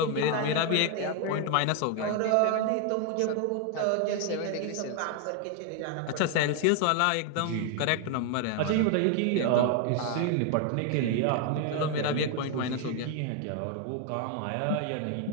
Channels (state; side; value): different; both; correlation 0.01